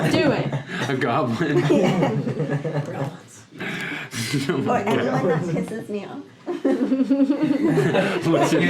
it. A goblin. Yeah. No, Or yeah. anyone that pisses me off. What's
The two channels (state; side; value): identical; both; correlation 1.00